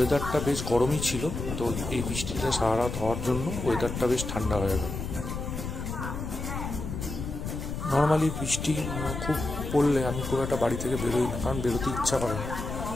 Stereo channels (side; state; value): left; noise; rumble, 6 dB below the sound